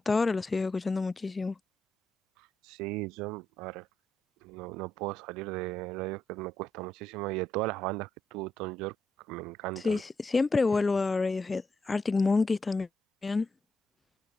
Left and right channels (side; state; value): both; normal; correlation 0.81